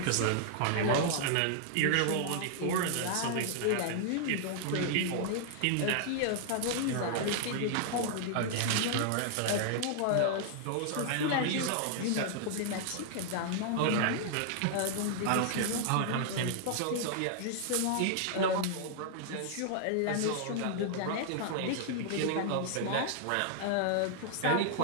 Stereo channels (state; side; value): different; both; correlation -0.01